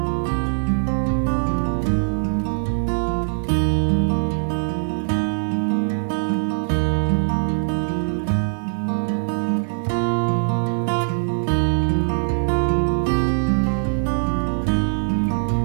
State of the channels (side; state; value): left; silent; digital silence